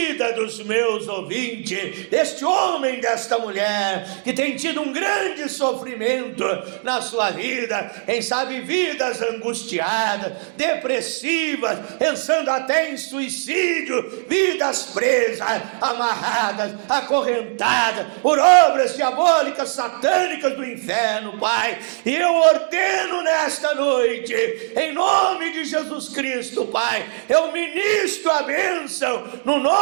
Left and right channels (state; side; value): silent; left; 65 dB below the other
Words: dos meus ouvintes, deste homem, desta mulher, que tem tido um grande sofrimento na sua vida, quem sabe vidas angustiadas, depressivas, pensando até em suicídio, vidas presas, amarradas, acorrentadas por obras diabólicas, satânicas do inferno, Pai. E eu ordeno nesta noite, em nome de Jesus Cristo, Pai, eu ministro a bênção no